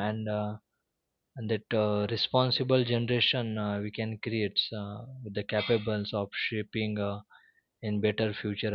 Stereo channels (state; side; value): identical; both; correlation 1.00